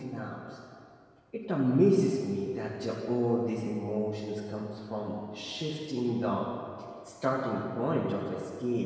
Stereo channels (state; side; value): identical; both; correlation 1.00